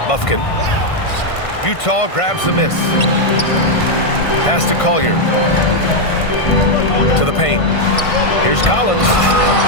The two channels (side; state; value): right; late; 1.5 ms